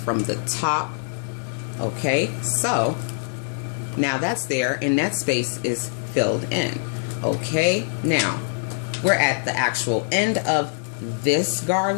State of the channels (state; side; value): silent; right; digital silence